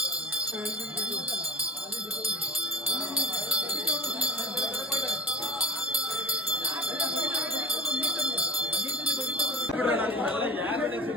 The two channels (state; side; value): normal; both; correlation 0.36